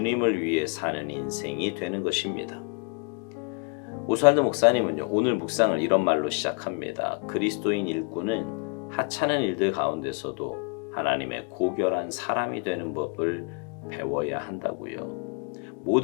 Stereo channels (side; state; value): right; quieter; 35.8 dB